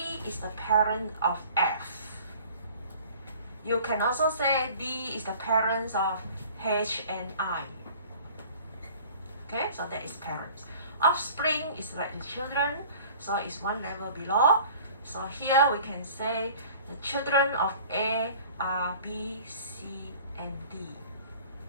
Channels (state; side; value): inverted; both; correlation -0.48